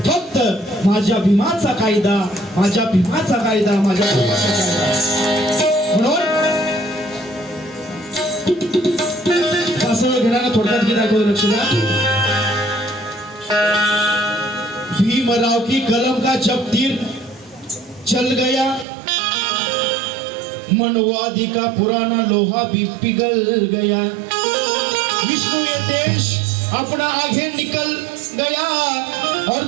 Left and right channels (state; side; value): drops out; left; at 18.9 s